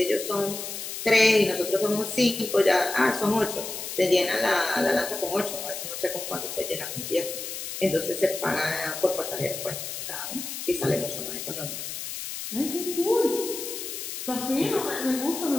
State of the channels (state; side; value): noise; left; hiss, 7 dB below the sound